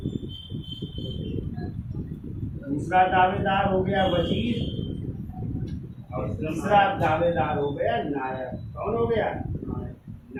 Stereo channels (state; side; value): identical; both; correlation 1.00